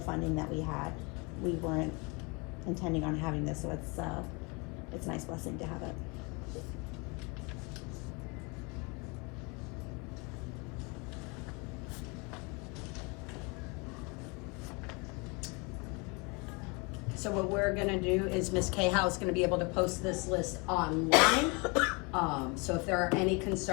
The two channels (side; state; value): right; quieter; 29.8 dB